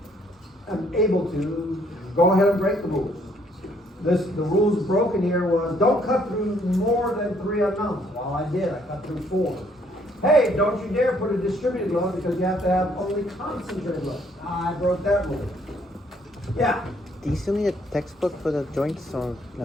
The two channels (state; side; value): normal; both; correlation 0.66